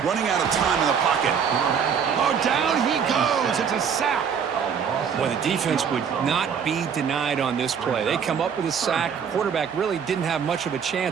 Running out of time in the pocket. Oh, down he goes. It's a sack. Well, the defense would not be denied on this play. They come up with a sack. Quarterback really didn't have much of a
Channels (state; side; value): quieter; left; 7.1 dB